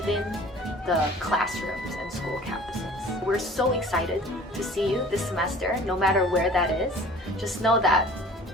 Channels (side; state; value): both; normal; correlation 0.47